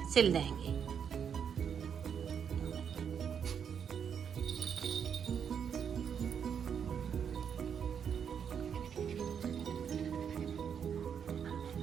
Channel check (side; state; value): left; quieter; 7.6 dB